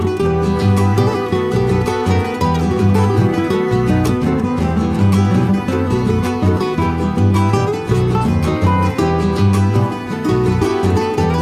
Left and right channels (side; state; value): both; identical; correlation 1.00